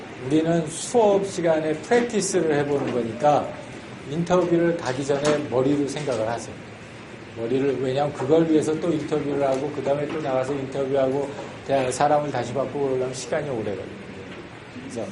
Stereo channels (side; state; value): both; identical; correlation 1.00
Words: 우리는 수업 시간에 프랙티스를 해보는 거니까 인터뷰를 가기 전에 머리로 생각을 하세요. 왜냐하면 그걸 위해서 또 인터뷰를 하고 그 다음에 또 나가서 인터뷰하고 사람을 다시 바꾸고 그러려면 시간이 오래 걸려요. 그래서